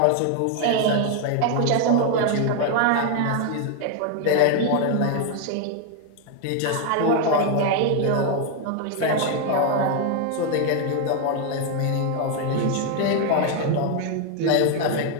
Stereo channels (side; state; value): both; different; correlation 0.01